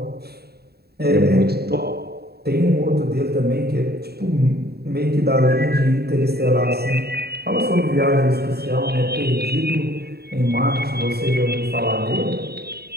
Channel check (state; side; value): late; left; 0.46 ms